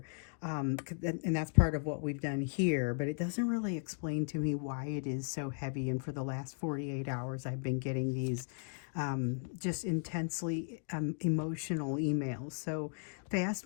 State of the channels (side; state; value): right; silent; 54 dB below the other